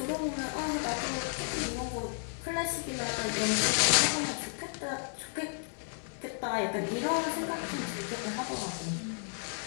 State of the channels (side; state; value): right; silent; 56 dB below the other